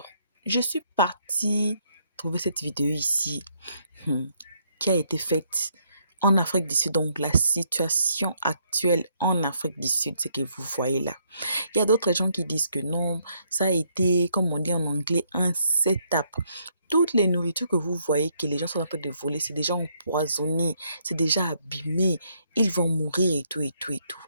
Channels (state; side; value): inverted; both; correlation -0.72